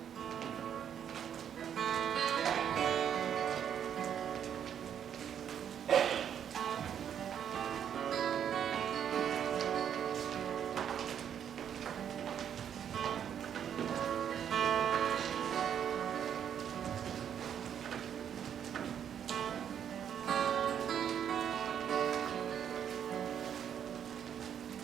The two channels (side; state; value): left; quieter; 8.8 dB